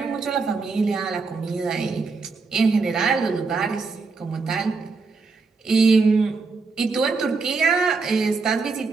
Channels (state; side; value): quieter; left; 4.3 dB